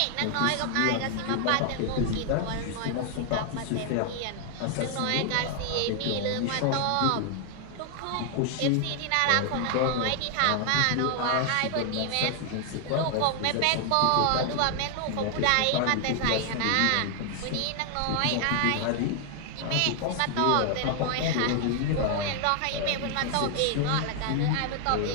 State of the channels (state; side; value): different; both; correlation 0.00